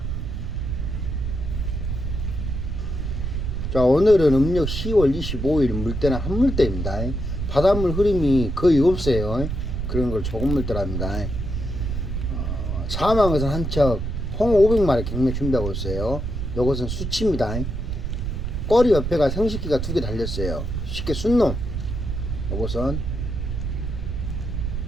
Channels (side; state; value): right; noise; rumble, 3 dB below the sound